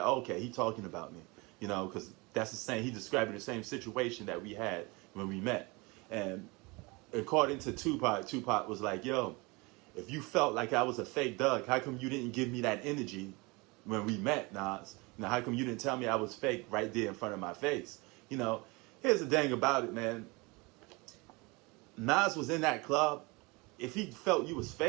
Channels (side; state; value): left; quieter; 26.1 dB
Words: oh, okay, he talking about me. Because that's the same, he describing the same situation that we had when we met. And according to Tupac, Tupac was like, yo, if you felt like I was a fake Doug, how come you didn't give me that energy when we met, Nas? How come you didn't tell me I was fake right there in front of my face? Here's the thing about it, man. Nas was in that club. If he felt you was